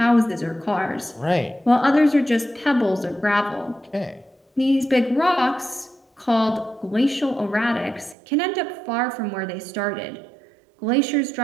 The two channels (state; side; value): drops out; left; at 8.2 s